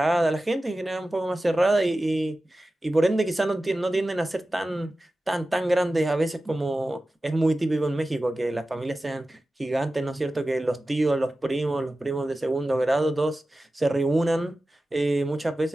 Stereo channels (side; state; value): both; normal; correlation 0.95